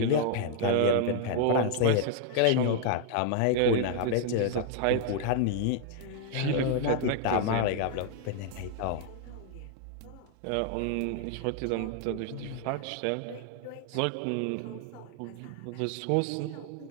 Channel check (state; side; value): different; both; correlation 0.00